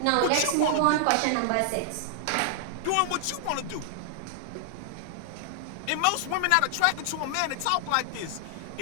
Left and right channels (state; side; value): different; both; correlation -0.01